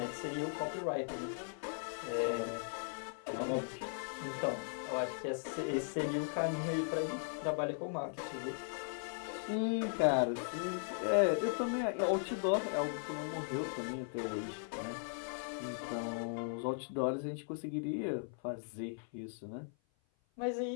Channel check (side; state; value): right; silent; 52 dB below the other